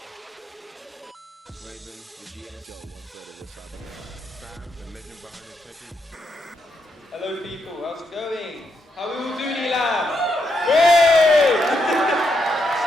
Raven, the GS, one third of the Sam, the legend behind the technique. Hello people, how's it going? How are we all doing, ELAM? Whey!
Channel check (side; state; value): both; normal; correlation 0.80